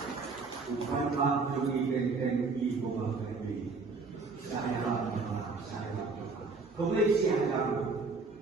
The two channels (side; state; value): left; quieter; 4.2 dB